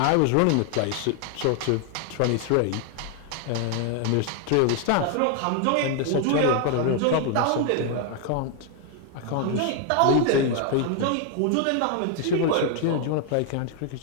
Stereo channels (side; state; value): both; different; correlation 0.00